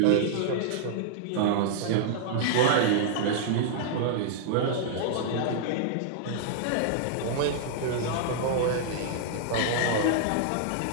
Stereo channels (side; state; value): both; different; correlation -0.01